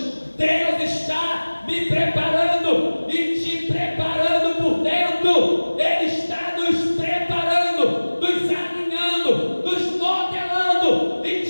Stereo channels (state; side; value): inverted; both; correlation -1.00